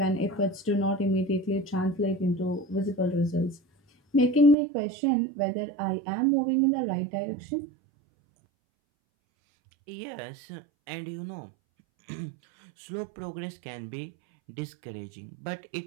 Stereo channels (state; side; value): drops out; left; at 4.5 s